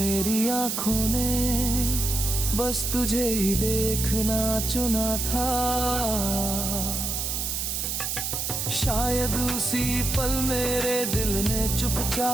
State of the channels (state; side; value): noise; right; hiss, 2 dB below the sound